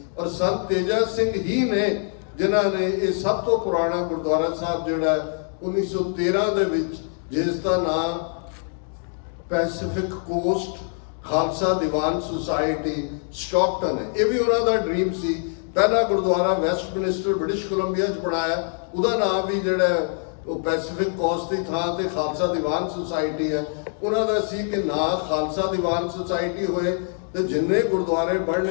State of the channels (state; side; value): silent; right; 63 dB below the other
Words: ਔਰ ਸੰਤ ਤੇਜਾ ਸਿੰਘ ਹੀ ਨੇ ਜਿਨ੍ਹਾਂ ਨੇ ਇਹ ਸਭ ਤੋਂ ਪੁਰਾਣਾ ਗੁਰਦੁਆਰਾ ਸਾਹਿਬ ਜਿਹੜਾ 1913 ਦੇ ਵਿੱਚ, ਜਿਸ ਦਾ ਨਾਮ Pacific cost Khalsa Diwan society Stockton ਹੈ, ਇਹ ਵੀ ਉਹਨਾਂ ਦਾ ਡ੍ਰੀਮ ਸੀ। ਪਹਿਲਾ ਗੁਰਦੁਆਰਾ ਵੈਸਟਮਿਨਿਸਟਰ ਬ੍ਰਿਟਿਸ਼ ਕੋਲੰਬੀਆ 'ਚ ਬਣਾਇਆ, ਉਹਦਾ ਨਾਮ ਵੀ ਜਿਹੜਾ ਉਹ ਪੈਸੀਫਿਕ ਕੋਸਟ ਦੀ ਥਾਂ ਤੇ ਖਾਲਸਾ ਦੀਵਾਨ ਸੁਸਾਇਟੀ ਹੈ। ਉਹਨਾਂ ਦਾ ਸੀ ਕਿ ਨਾ ਖਾਲਸਾ ਦੀਵਾਨ ਸੁਸਾਇਟੀ ਹੋਏ ਤੇ ਜਿੰਨੇ ਗੁਰਦੁਆਰੇ